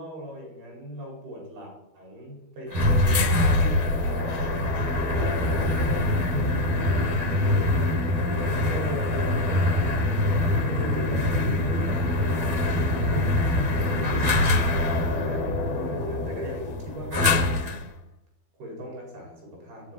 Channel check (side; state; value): left; late; 12 ms